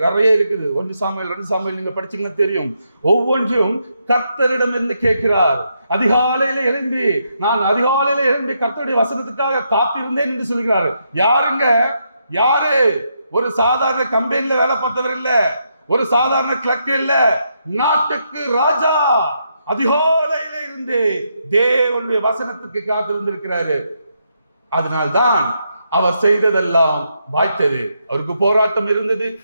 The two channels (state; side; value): inverted; both; correlation -0.79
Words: நிறைய இருக்குது. 1 சாமுவேல் 2 சாமுவேல் நீங்க படிச்சீங்கன்னா தெரியும். ஒவ்வொன்றையும் கர்த்தரிடம் இருந்து கேட்கிறார். அதிகாலையில எழும்பி கர்த்தருடைய வசனத்துக்காக காத்திருந்தேன் என்று சொல்கிறார். யாருங்க? யாரு? ஒரு சாதாரண கம்பெனில வேலை பார்த்தவர் இல்ல, ஒரு சாதாரண கிளர்க் இல்ல, நாட்டுக்கு ராஜா. அதிகாலையில இருந்து தேவனுடைய வசனத்துக்கு காத்திருந்திருக்கிறாரு. அதனால்தான் அவர் செய்ததெல்லாம் வாய்த்தது. அவருக்கு போராட்டம் இருந்தது,